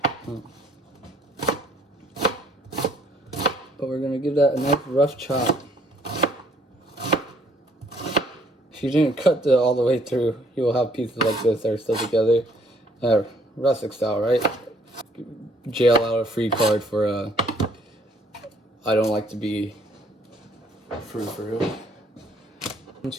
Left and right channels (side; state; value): both; normal; correlation 0.63